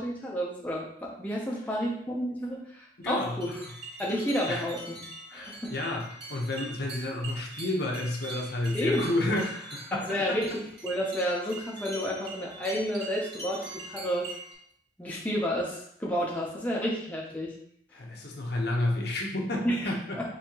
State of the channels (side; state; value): both; normal; correlation 0.65